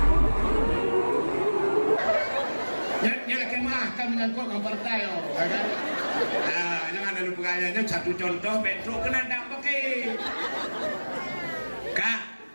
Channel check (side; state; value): both; inverted; correlation -1.00